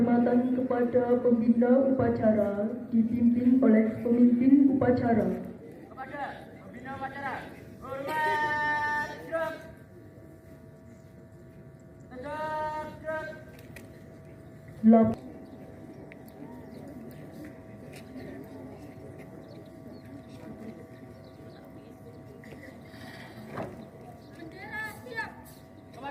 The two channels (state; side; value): identical; both; correlation 1.00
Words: kepada pembina upacara dipimpin oleh pemimpin upacara. Kepada pembina upacara, hormat gerak. Tegak gerak. Bendera siap.